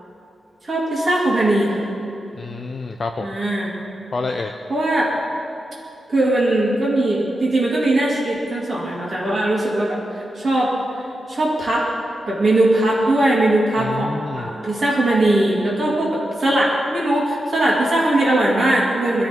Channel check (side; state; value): both; normal; correlation 0.88